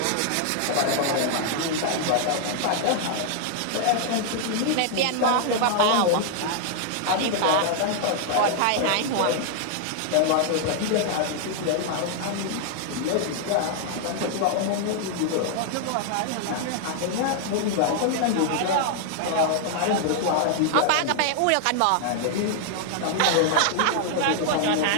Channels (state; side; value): different; both; correlation 0.00